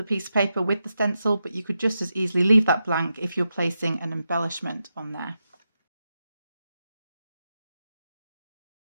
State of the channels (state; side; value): inverted; both; correlation -0.87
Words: piece of paper with the stencil, but you could just as easily leave that blank if you're placing an embellishment on there.